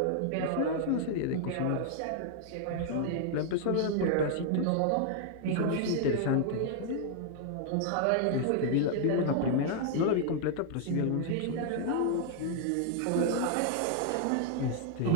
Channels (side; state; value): both; different; correlation 0.00